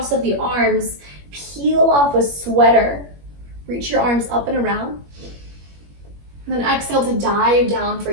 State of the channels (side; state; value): left; late; 21 ms